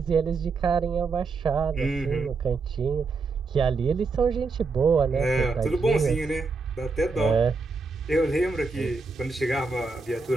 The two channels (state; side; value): quieter; left; 4.2 dB